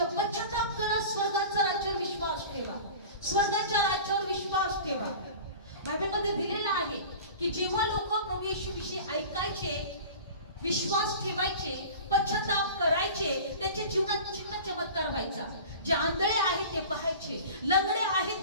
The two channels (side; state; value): both; inverted; correlation -0.38